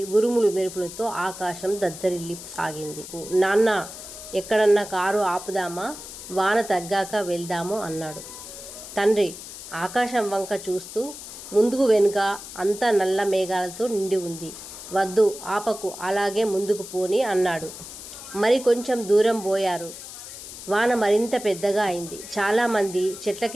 ఉరుములు మెరుపులతో ఆకాశం దద్దరిల్లి సాగింది. నాన్న, ఎక్కడన్నా కారు ఆపుదామా? వాన తగ్గాక వెళ్దాము అన్నాడు. తండ్రి ఆకాశం వంక చూస్తూ, ముందుకు వెనుక అంతా నల్ల మేఘాలతో నిండి ఉంది. వద్దు, ఆపకు, అలాగే ముందుకు పోని అన్నాడు. మరి కొంచెం దూరం పోయారు. వాన మరింత పెద్దగా అయింది. చాలామంది చెట్ల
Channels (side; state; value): left; noise; hiss, 12 dB below the sound